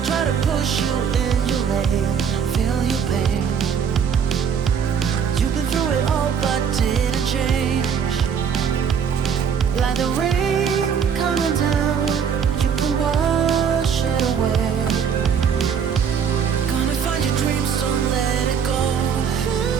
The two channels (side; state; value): left; quieter; 7.2 dB